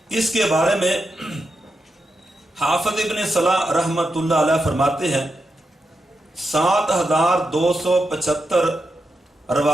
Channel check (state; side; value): normal; both; correlation 0.86